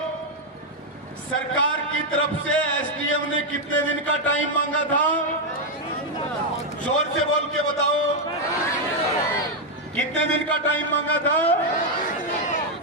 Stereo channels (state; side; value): normal; both; correlation 0.01